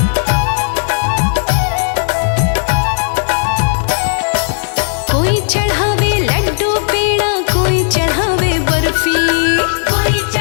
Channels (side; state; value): right; silent; digital silence